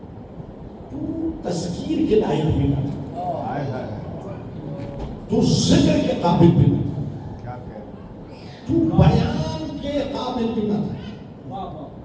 تو تذکیر کے لائق بھی نہ تھا، تو ذکر کے قابل بھی نہ تھا، تو بیان کے قابل بھی نہ تھا،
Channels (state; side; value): identical; both; correlation 1.00